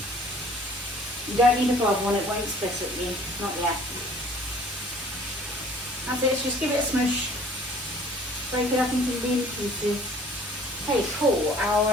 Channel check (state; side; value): normal; both; correlation 0.53